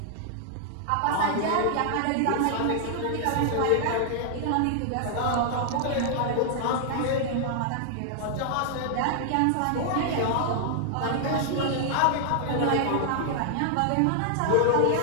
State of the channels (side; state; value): both; different; correlation -0.01